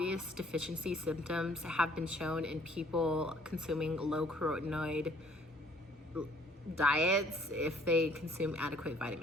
deficiency symptoms have been shown in people consuming low carotenoid diets if they consume adequate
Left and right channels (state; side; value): normal; both; correlation 0.60